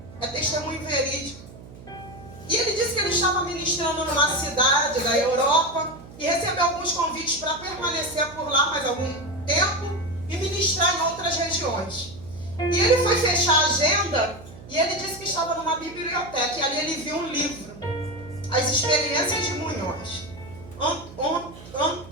É testemunho verídico. E ele disse que ele estava ministrando numa cidade da Europa e recebeu alguns convites para permanecer por lá mais algum tempo e ministrar em outras regiões. E ele foi fechar a agenda e ele disse que estava numa biblioteca e ali ele viu um livro, As Experiências de Munhoz.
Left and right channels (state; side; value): noise; right; hum, 18 dB below the sound